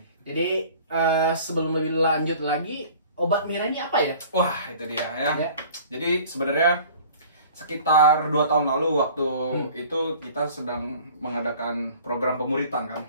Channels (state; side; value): inverted; both; correlation -0.47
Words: Jadi sebelum lebih lanjut lagi, obat merah ini apa ya? Wah, itu dia ya. Jadi sebenarnya sekitar 2 tahun lalu waktu itu kita sedang mengadakan program pemuritan kan.